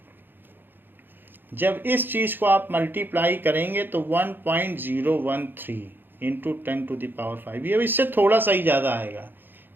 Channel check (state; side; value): late; left; 0.096 ms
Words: जब इस चीज़ को आप मल्टीप्लाई करेंगे तो 1.013 इंटू 10⁵, ये इससे थोड़ा सा ही ज़्यादा आएगा,